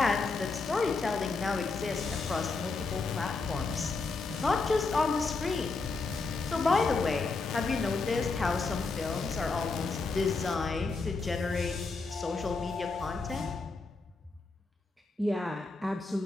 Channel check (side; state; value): right; quieter; 3.9 dB